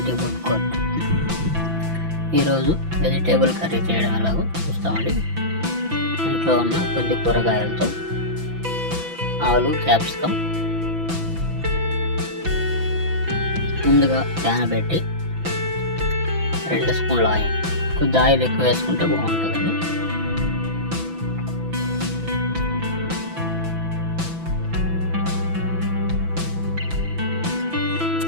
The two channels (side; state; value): left; late; 6.0 ms